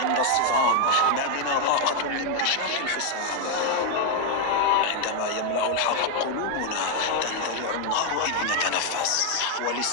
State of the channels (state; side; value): different; both; correlation 0.00